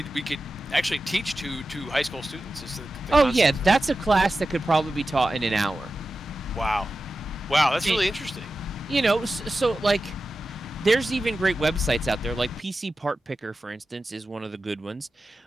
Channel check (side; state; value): both; normal; correlation 0.93